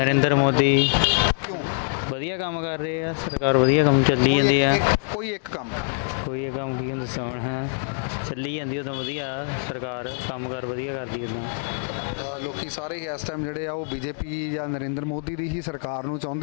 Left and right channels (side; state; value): right; silent; digital silence